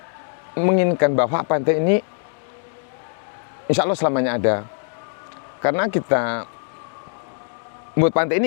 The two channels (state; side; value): silent; right; 64 dB below the other